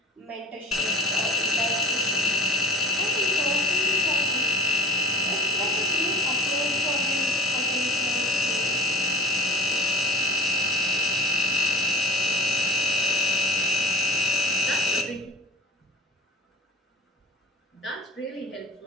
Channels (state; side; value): normal; both; correlation 0.39